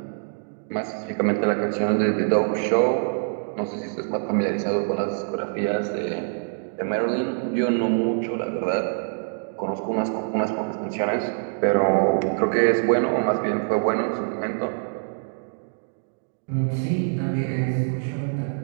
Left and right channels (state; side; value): silent; left; digital silence